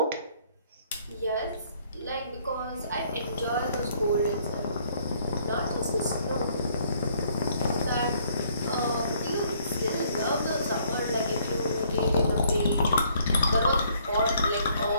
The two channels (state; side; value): inverted; both; correlation -0.64